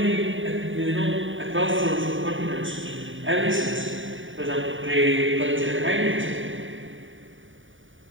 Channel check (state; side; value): late; left; 0.57 ms